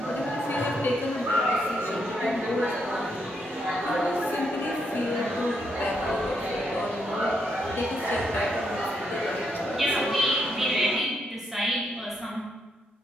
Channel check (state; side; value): normal; both; correlation 0.78